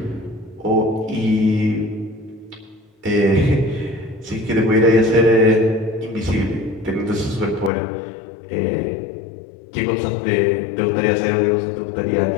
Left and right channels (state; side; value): drops out; right; at 7.7 s